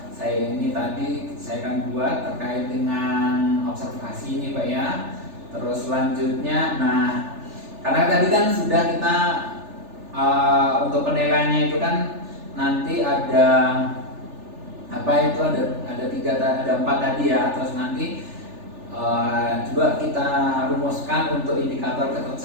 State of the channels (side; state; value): left; late; 3.4 ms